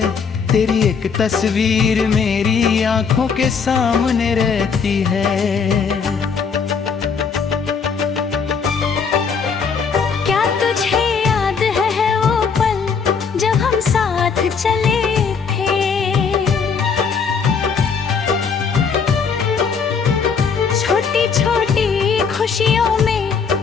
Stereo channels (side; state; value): right; quieter; 5.9 dB